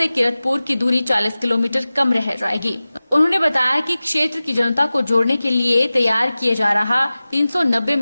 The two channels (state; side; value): inverted; both; correlation -0.97